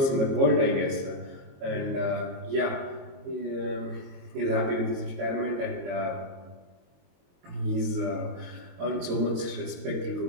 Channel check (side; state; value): left; late; 22 ms